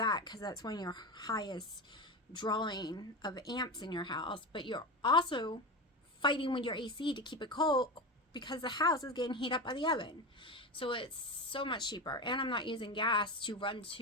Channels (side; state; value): both; normal; correlation 0.21